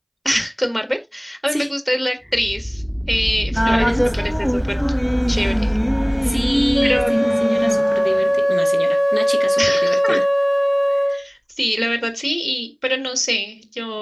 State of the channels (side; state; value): both; identical; correlation 1.00